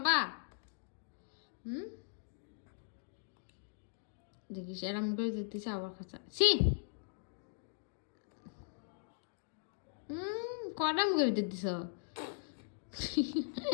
দেখিস এরম করে দিতেছে আবার খাঁচা। ছি, কটা মুখে ভিতর দিছ?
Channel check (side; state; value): right; silent; digital silence